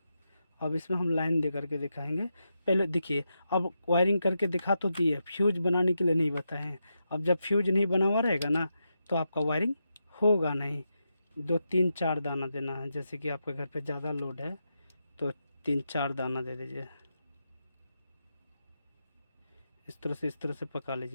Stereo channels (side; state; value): both; inverted; correlation -0.86